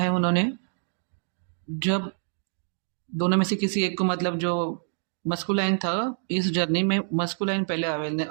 उन्होंने? जब दोनों में से किसी एक को, मतलब जो मस्कुलाइन था, इस जर्नी में मस्कुलाइन पहले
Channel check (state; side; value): silent; left; digital silence